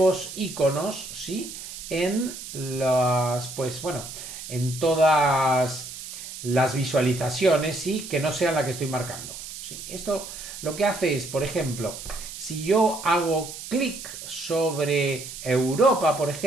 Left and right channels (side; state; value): right; noise; hiss, 11 dB below the sound